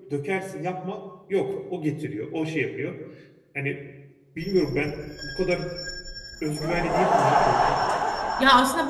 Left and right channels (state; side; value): identical; both; correlation 1.00